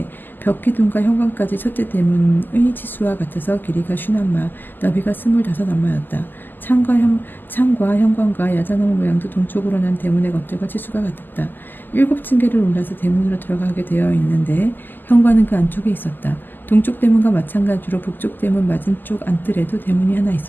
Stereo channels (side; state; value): right; late; 0.090 ms